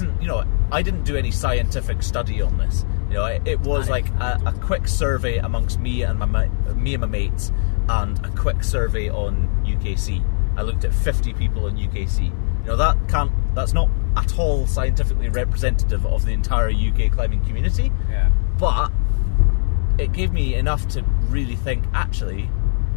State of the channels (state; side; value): silent; right; digital silence